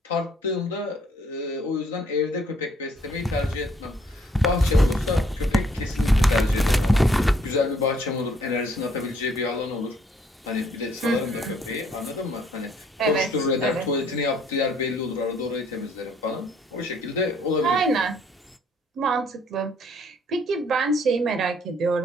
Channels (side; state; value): both; normal; correlation 0.64